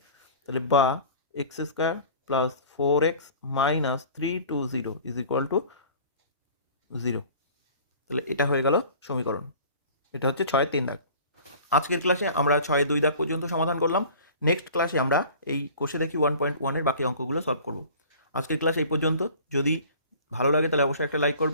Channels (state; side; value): inverted; both; correlation -0.45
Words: তাহলে বা x square plus 4x minus 320 is equal two 0। তাহলে এটা হয়ে গেল সমীকরণ। এটা হচ্ছে 6-3 দাগ। আজকের ক্লাসে আমরা 6-2 দাগ পর্যন্ত সমাধান করলাম। নেক্সট ক্লাসে আমরা এই কোষে দেখি 1.1-এর বাকি অঙ্কগুলো সলভ করব। আজকের ক্লাস এই পর্যন্ত। যদি ভালো লাগে তাহলে অবশ্যই একটা লাইক